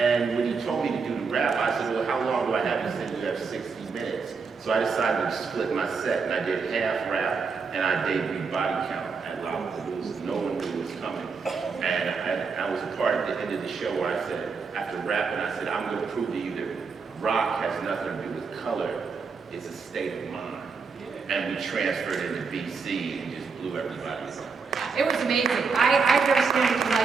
when he told me to do the rap, I said, well, how long do I have? He said, you have 60 minutes. So I decided to split my set, and I did half rap, and I debuted Body Count at Lollapalooza. No one knew it was coming. And I was a part at the end of the show where I said, after rapping, I said, I'm going to prove to you that rock has nothing to do with color. It's a state of mind. And we transferred into BC and just blew everybody away. It was amazing. I've never seen anything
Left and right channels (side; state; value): left; quieter; 5.1 dB